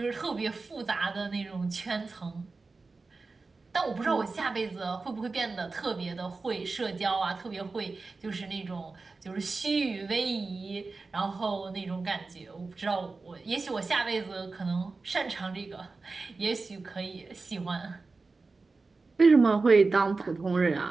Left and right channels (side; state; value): left; quieter; 3.9 dB